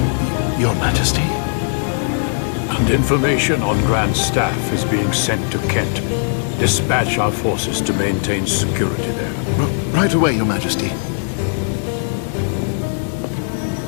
Your Majesty? And information on Grand Staff is being sent to Kent. Dispatch our forces to maintain security there. Right away, Your Majesty.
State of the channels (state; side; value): silent; right; digital silence